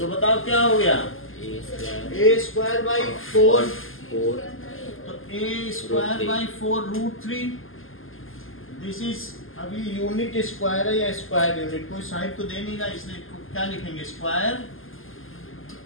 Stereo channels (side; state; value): right; late; 0.59 ms